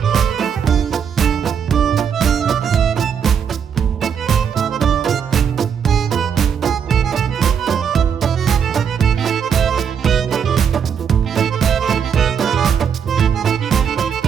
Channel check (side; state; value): left; quieter; 7.5 dB